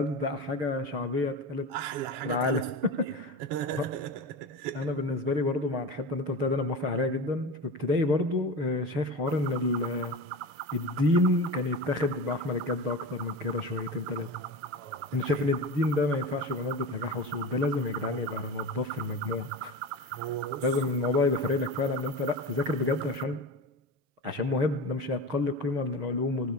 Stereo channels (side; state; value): left; late; 7.4 ms